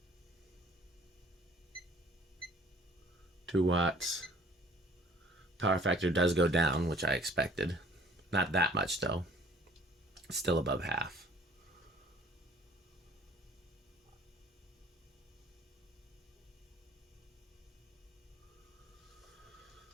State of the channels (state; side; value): normal; both; correlation 0.53